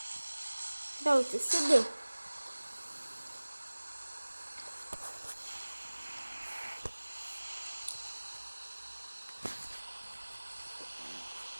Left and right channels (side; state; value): both; inverted; correlation -1.00